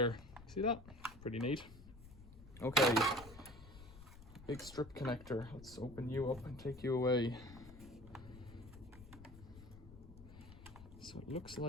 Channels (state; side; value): noise; left; rumble, 17 dB below the sound